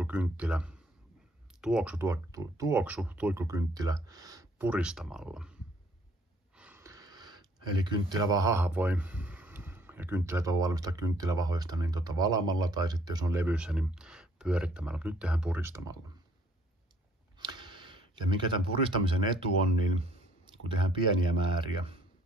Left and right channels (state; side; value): normal; both; correlation 0.61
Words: tuoksu tuikkukynttilä puristamalla. Eli kynttilävahaa voi, ja kynttilät voi valmistaa kynttilävahoista niin valamalla tai sitten jos on levyssä niin pyörittämällä. Nyt tehdään puristamalla. Ja mikä tämän puristamisen etu on, niin kun tehdään pieniä määriä,